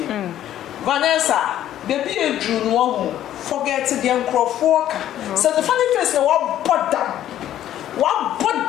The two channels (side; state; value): right; quieter; 11.9 dB